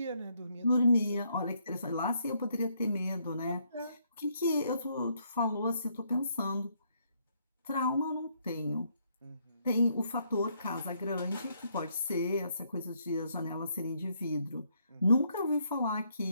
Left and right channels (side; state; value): both; inverted; correlation -0.72